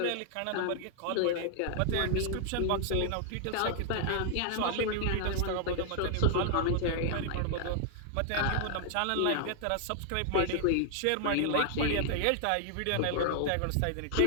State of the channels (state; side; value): different; both; correlation -0.01